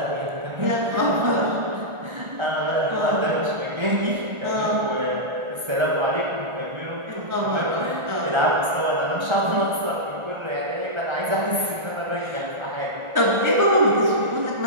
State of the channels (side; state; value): left; late; 1.4 ms